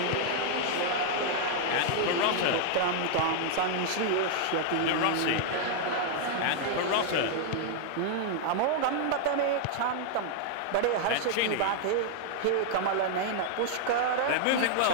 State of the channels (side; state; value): both; different; correlation -0.01